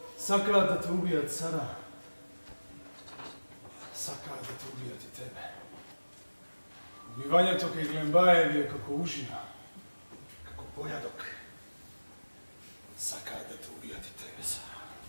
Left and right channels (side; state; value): both; inverted; correlation -1.00